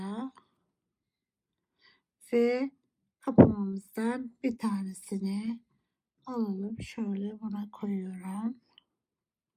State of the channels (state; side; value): identical; both; correlation 1.00